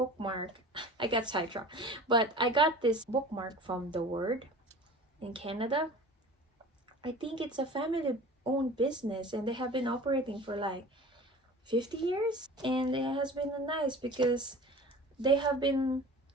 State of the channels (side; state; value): both; normal; correlation 0.40